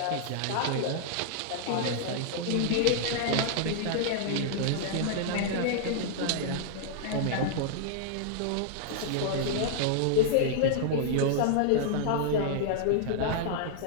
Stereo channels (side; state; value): both; different; correlation -0.01